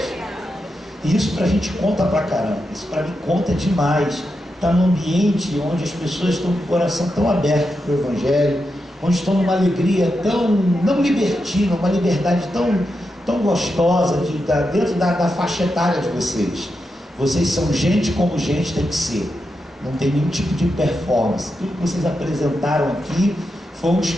E isso pra gente conta pra caramba, isso pra mim conta demais. Está num ambiente onde as pessoas estão com o coração tão aberto para o Evangelho, onde estão numa alegria tão, não libertina, uma liberdade tão gostosa, dentro da faixa etária de vocês. Vocês são gente como gente tem que ser, não tem nenhum tipo de performance. Tudo que vocês apresentaram aqui foi um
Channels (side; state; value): both; normal; correlation 0.87